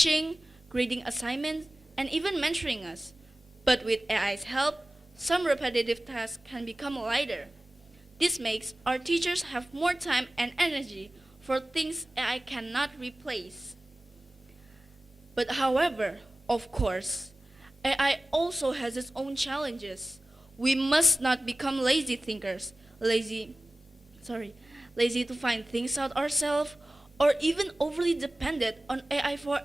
grading assignments, and even mentoring us. But with AI's help, some repetitive tasks can become lighter. This makes our teachers have more time and energy for things AI cannot replace. But however, of course, AI also has its own challenges. We must not become lazy thinkers, lazy to find things out ourselves, or even overly dependent on AI for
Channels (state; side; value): normal; both; correlation 0.96